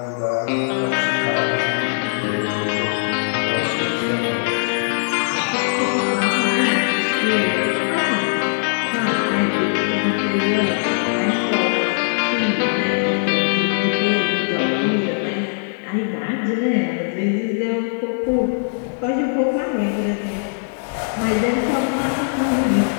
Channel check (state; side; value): silent; right; 60 dB below the other